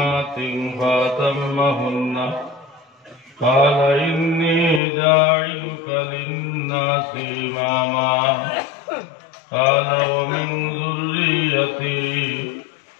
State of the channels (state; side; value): drops out; right; at 4.8 s